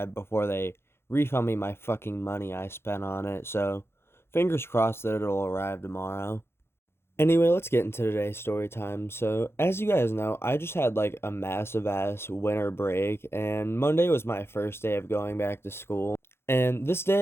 before they refund me my fucking money I spent on it. So fingers crossed that it'll arrive tomorrow. Anyway, let's get into today's story time. So, as you guys know, I just had like a massive ass winter break, and Monday was my first day of going back to school. And this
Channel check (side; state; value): right; late; 0.12 ms